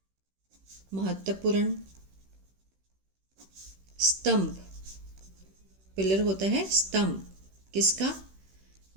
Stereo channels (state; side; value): late; left; 16 ms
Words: महत्वपूर्ण, स्तंभ, पिलर होता है स्तंभ, किसका?